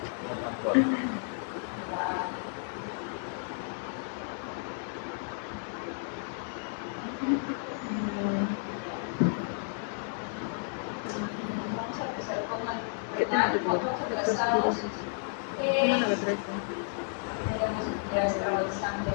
más suave. Vamos a empezar con el ¿Qué tema te pongo? Semana la 13. ya estar avanzando.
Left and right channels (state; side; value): silent; right; 56 dB below the other